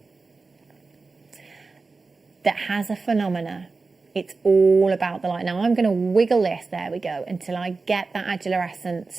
has a phenomena, it's all about the light. Now, I'm going to wiggle this, there we go, until I get that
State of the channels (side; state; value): left; quieter; 4.0 dB